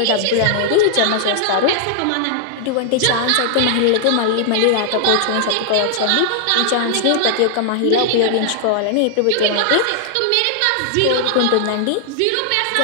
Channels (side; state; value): both; different; correlation 0.00